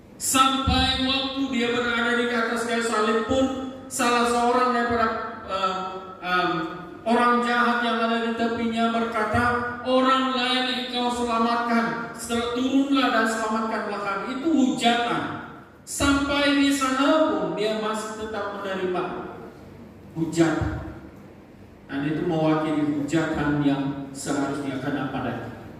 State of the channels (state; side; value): identical; both; correlation 1.00